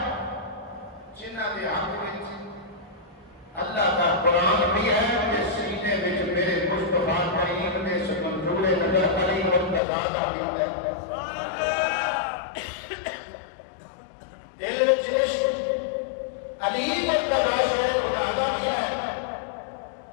जिन्होंने हक में अल्लाह का कुरान भी है कि सीने में मेरे मुस्तफा करीम ने मंजूर नजर अली मुर्तजा का भी है। दिल में इश्क अली मुर्तजा शेर खुदा का भी है,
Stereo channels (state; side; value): drops out; right; at 9.8 s